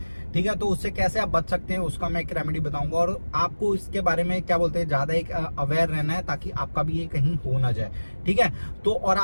ठीक है, तो उससे कैसे आप बच सकते हैं उसका मैं एक रेमेडी बताऊंगा और आपको इसके बारे में क्या बोलते हैं ज्यादा एक अवेयर रहना है ताकि आपका भी ये कहीं हो ना जाए। ठीक है, तो और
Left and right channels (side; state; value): both; inverted; correlation -1.00